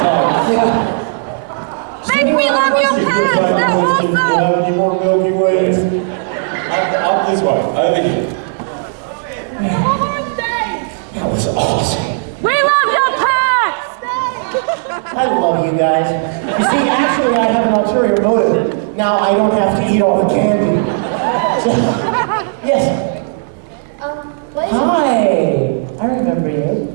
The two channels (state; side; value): silent; left; 70 dB below the other